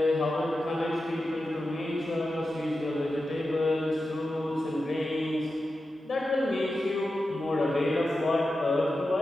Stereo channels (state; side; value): normal; both; correlation 0.91